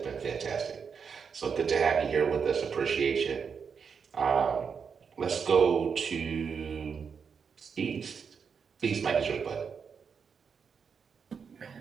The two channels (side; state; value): left; quieter; 6.3 dB